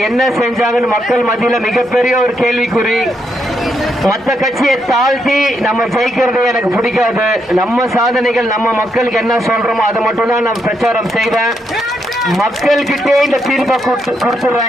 என்ன செஞ்சாங்கன்னு மக்கள் மத்தியில மிகப்பெரிய ஒரு கேள்விக்குறி. மற்ற கட்சியை தாழ்த்தி நம்ம ஜெயிக்கிறதே எனக்கு பிடிக்காது. நம்ம சாதனைகள், நம்ம மக்களுக்கு என்ன சொல்றோமோ அதை மட்டும் தான் நான் பிரச்சாரம் செய்வேன். மக்கள் கிட்டே இந்த தீர்ப்பை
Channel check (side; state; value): both; normal; correlation 0.79